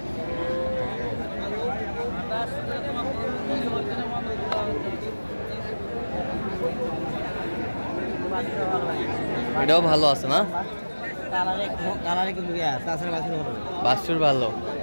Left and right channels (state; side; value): inverted; both; correlation -1.00